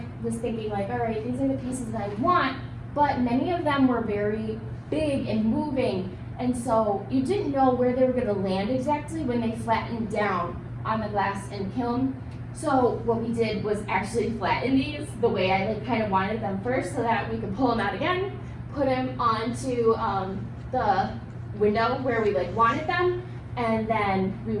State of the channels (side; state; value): both; identical; correlation 1.00